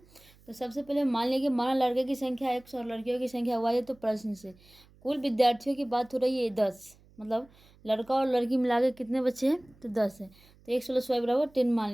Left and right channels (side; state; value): right; noise; hum, 28 dB below the sound